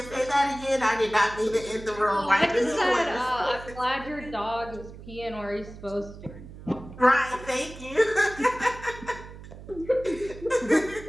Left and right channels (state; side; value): noise; right; hum, 15 dB below the sound